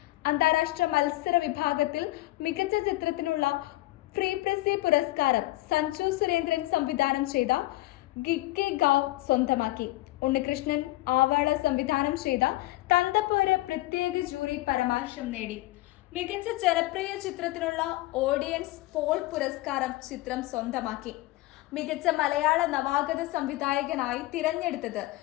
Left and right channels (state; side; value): quieter; right; 18.7 dB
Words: അന്താരാഷ്ട്ര മത്സര വിഭാഗത്തിൽ മികച്ച ചിത്രത്തിനുള്ള ഫ്രീ പ്രസി പുരസ്കാരം സഞ്ജു സുരേന്ദ്രൻ സംവിധാനം ചെയ്ത ഗിക്കെ ഗാവ് സ്വന്തമാക്കി. ഉണ്ണികൃഷ്ണൻ ആവാള സംവിധാനം ചെയ്ത തന്തപ്പോര് പ്രത്യേക ജൂറി പരാമർശം നേടി. മികച്ച ജനപ്രിയ ചിത്രത്തിനുള്ള ഓഡിയൻസ് പോൾ പുരസ്കാരം ചിത്രം സ്വന്തമാക്കി. മികച്ച മലയാള നവാഗത സംവിധായകനായി തിരഞ്ഞെടുത്തത്